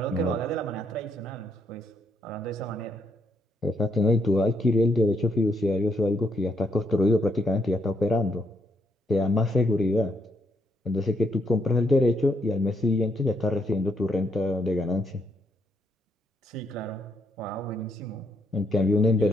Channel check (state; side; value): normal; both; correlation 0.75